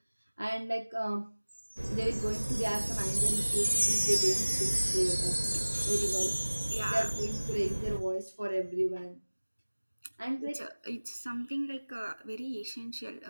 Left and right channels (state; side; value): inverted; both; correlation -1.00